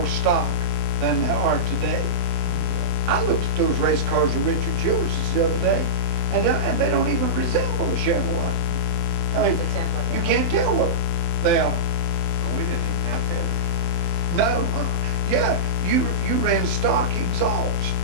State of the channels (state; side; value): late; left; 24 ms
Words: stock than they are today. I looked at those race cars of Richard Childress the other day, and they don't even resemble a Chevrolet. I mean, you can't tell what they are. Well, we didn't even have that. No, yeah, you ran stock exhaust,